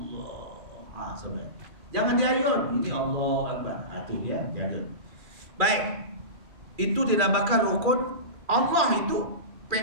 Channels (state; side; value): late; left; 2.4 ms